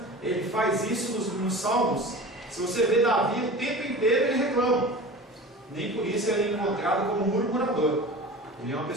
ele faz isso nos salmos. Se você vê Davi, o tempo inteiro ele reclama. Nem por isso ele é encontrado como murmurador. Ele é uma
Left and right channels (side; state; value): both; normal; correlation 0.35